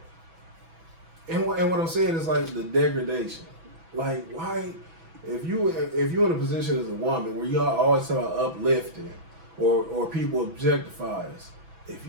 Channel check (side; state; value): left; late; 6.0 ms